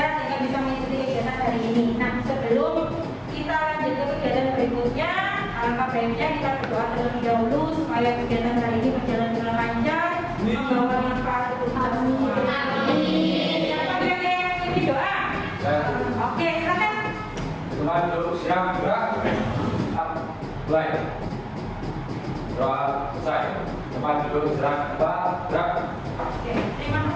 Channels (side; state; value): both; identical; correlation 1.00